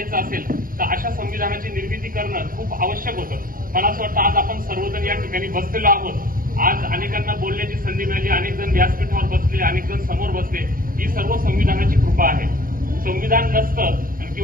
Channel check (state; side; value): late; left; 0.41 ms